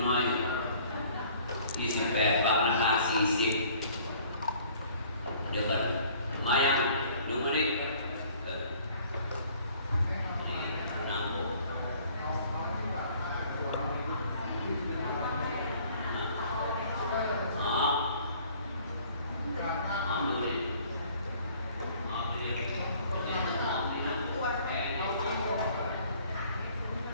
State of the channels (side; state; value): both; inverted; correlation -0.56